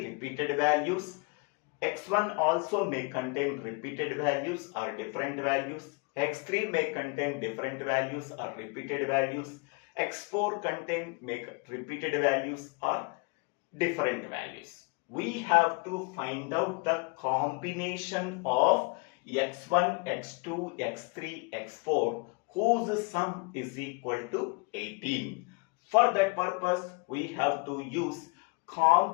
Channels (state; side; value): quieter; right; 30.8 dB